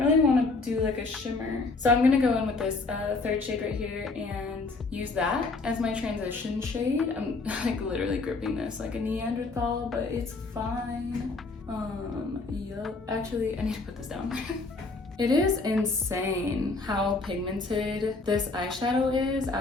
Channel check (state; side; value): quieter; right; 3.7 dB